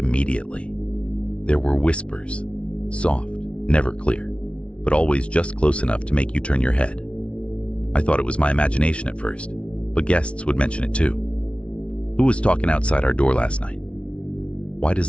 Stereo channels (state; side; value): late; right; 0.060 ms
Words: There were whispers. Soft, never clear, but always just close enough to make you turn your head. I thought it was my imagination at first, but guests would mention it too. Who was talking outside our door last night? Why does